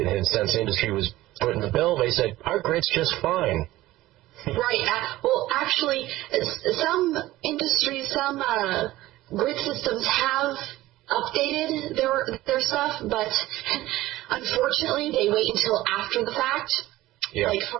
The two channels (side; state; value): left; quieter; 16.8 dB